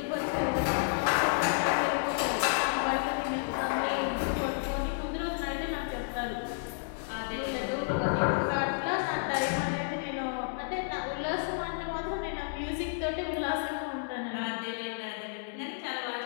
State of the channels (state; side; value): silent; right; digital silence